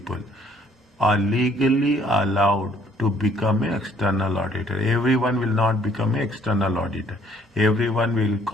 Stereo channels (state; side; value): normal; both; correlation 0.62